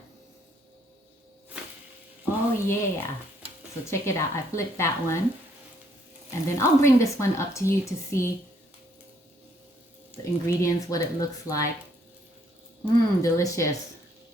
Oh yeah. So check it out. I flipped that one. And then I'll bring this one up to you to see the ingredients, what it looks like. Delicious.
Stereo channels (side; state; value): both; normal; correlation 0.68